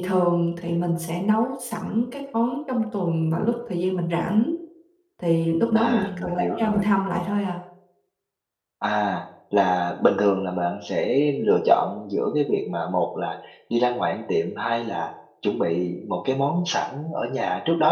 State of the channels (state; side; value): identical; both; correlation 1.00